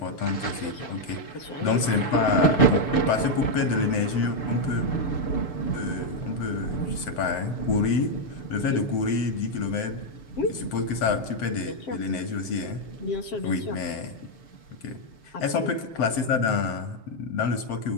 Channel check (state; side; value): late; right; 7.9 ms